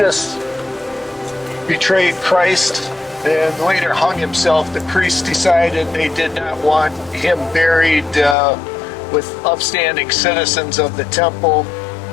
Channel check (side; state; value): right; drops out; at 8.3 s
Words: betrayed Christ and later hung himself. The priests decided they did not want him buried with upstanding citizens of the temple,